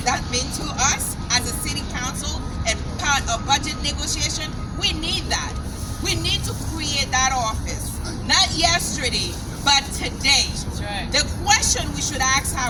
means to us as a city council and part of budget negotiation? We need that. We need to create that office. Not yesterday, but today. That's right. The question we should ask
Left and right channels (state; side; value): identical; both; correlation 1.00